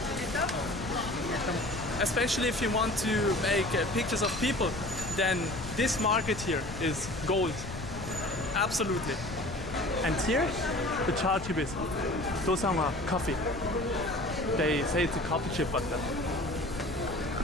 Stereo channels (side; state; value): left; noise; rumble, 10 dB below the sound